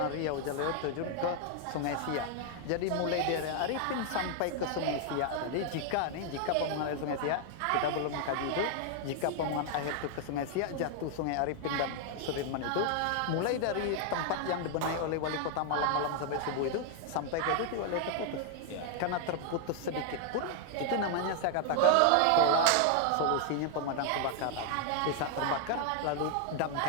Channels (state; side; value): different; both; correlation 0.00